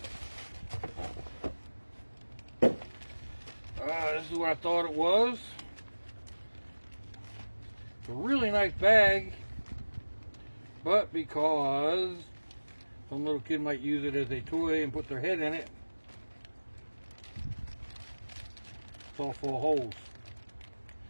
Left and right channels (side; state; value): both; inverted; correlation -1.00